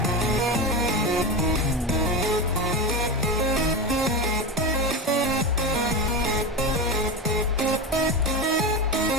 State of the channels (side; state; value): both; normal; correlation 0.20